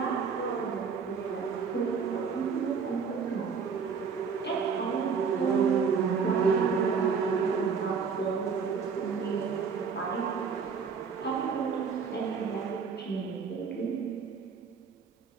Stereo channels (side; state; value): left; quieter; 5.8 dB